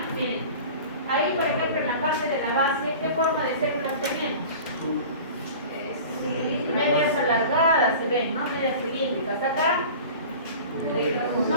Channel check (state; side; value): inverted; both; correlation -0.39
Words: Miren, ahí por ejemplo en la parte de la base, ¿qué forma de células tenemos? Medias alargadas se ven, ¿no? Medias cilíndricas. Acá